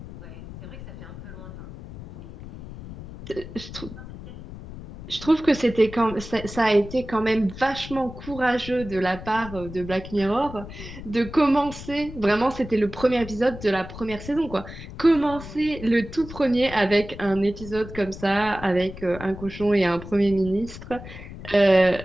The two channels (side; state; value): left; noise; rumble, 13 dB below the sound